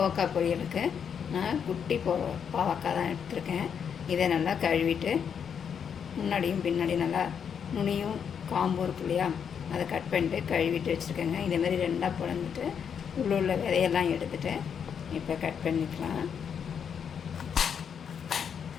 பொரியலுக்கு நான் குட்டி பாவக்காய் தான் எடுத்துருக்கேன். இதை நல்லா கழுவிட்டு முன்னாடியும் பின்னாடி நல்லா நுனியும் காம்பும் இருக்கு இல்லையா, அதை கட் பண்ணிட்டு கழுவிட்டு வச்சுருக்கேங்க. இதேமாதிரி ரெண்டாக பிளந்துட்டு உள்ள விதையெல்லாம் எடுத்துகிட்டு இப்போ கட் பண்ணிக்கலாம்.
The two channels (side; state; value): right; quieter; 7.5 dB